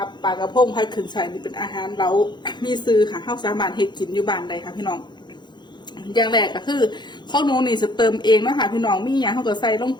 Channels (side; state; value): right; late; 0.21 ms